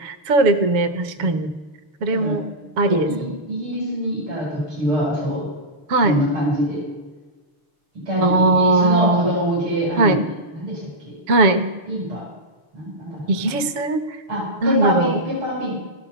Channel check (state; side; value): late; left; 7.1 ms